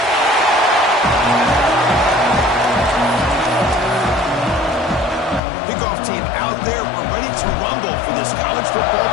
Kickoff team out there. We're ready to rumble for this college football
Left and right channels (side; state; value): right; drops out; at 5.4 s